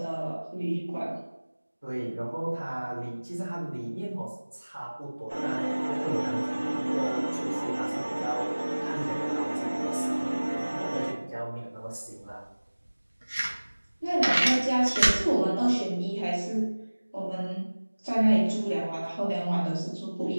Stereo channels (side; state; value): both; inverted; correlation -1.00